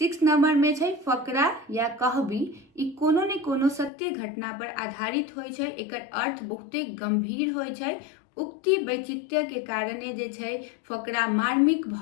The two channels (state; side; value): drops out; right; at 3.9 s